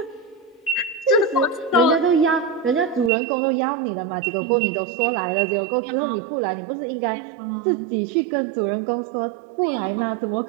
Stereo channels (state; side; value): drops out; left; at 3.1 s